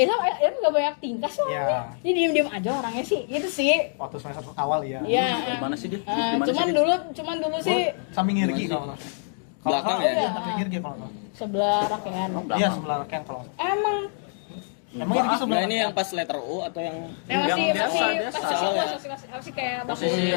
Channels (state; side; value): silent; right; 61 dB below the other